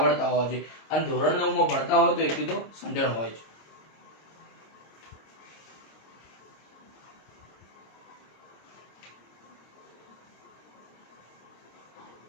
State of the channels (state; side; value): late; right; 26 ms